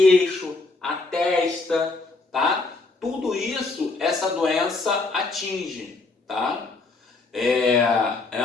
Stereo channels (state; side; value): quieter; right; 3.6 dB